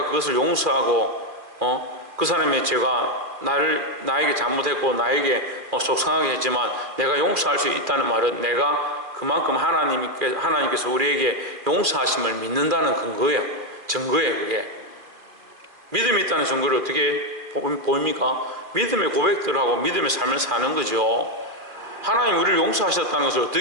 그것을 용서하고 그 사람의 죄가 나에게 잘못했고 나에게 속상하게 했지만 내가 용서할 수 있다는 말은 내가 그만큼 하나님께서 우리에게 용서하심을 믿는다는 근거예요. 증거예요. 그게 믿음이 있다는 증거를 어떻게 보입니까? 믿음의 고백들을 하고 믿음의 삶을 사는 거죠. 하나님 우리를 용서하셨다는 것을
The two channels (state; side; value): late; left; 2.5 ms